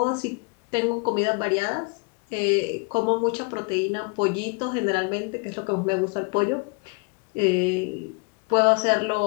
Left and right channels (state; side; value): quieter; right; 31.7 dB